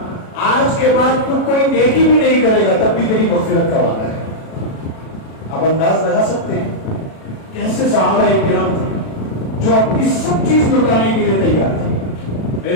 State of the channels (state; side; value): late; right; 36 ms